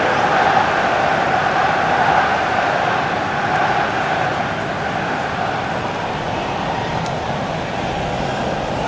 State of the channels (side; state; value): both; identical; correlation 1.00